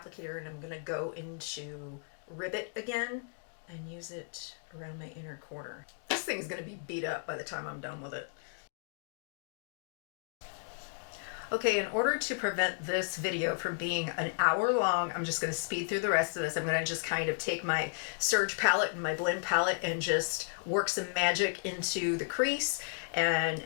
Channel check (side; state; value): right; silent; digital silence